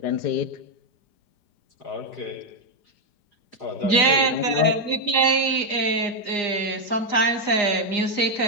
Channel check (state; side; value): late; right; 4.9 ms